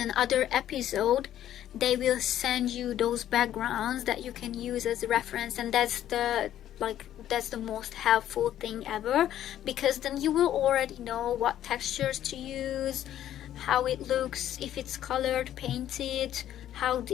episode, they will send you those backgrounds that you can use as a reference, and that's the most helpful thing ever, because then you will already know what textures to use, how it looks, if it's colored, painted, how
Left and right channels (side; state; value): right; quieter; 11.7 dB